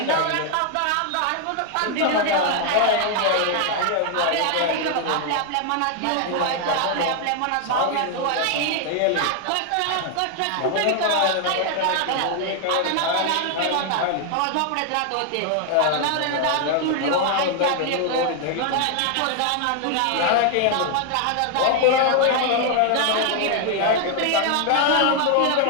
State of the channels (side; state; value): both; different; correlation 0.00